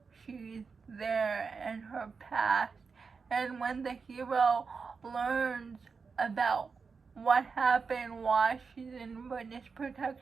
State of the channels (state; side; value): quieter; left; 5.1 dB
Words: she's there and her past. And when the hero learns about what happened, why she's in witness